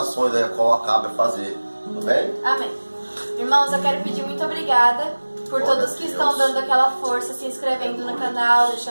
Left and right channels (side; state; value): both; inverted; correlation -1.00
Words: aí, a qual acaba de fazer, tudo bem? Amém. Irmãos, eu quero pedir muito obrigada por Glória todos a que Deus. estão dando aquela força, se inscrevendo no canal,